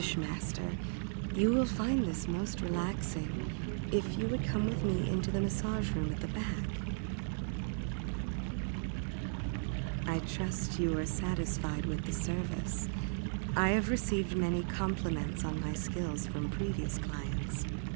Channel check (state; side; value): silent; left; 54 dB below the other